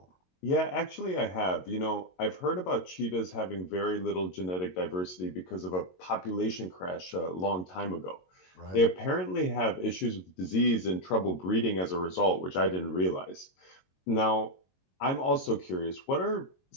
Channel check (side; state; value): right; late; 22 ms